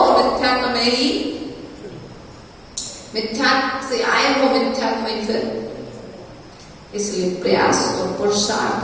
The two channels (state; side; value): identical; both; correlation 1.00